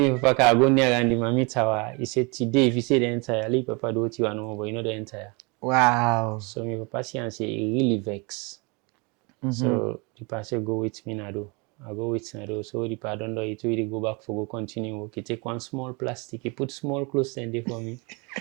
papa can go near and the mommy tower, he said today if you say the entire, leave papa do what you want no more, but you know the entire. Wow. So my papa see and say he really vex. So the papa say go with me now do. I go with Nado. So the papa don't do it. He go back for go continue work. He take one small plastic. He put small clothes in there for me.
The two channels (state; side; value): quieter; left; 29.6 dB